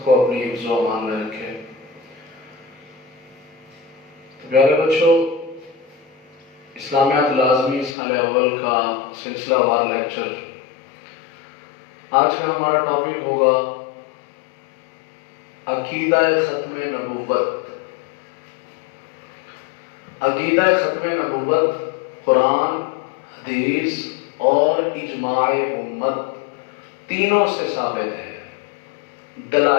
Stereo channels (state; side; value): drops out; right; at 8.0 s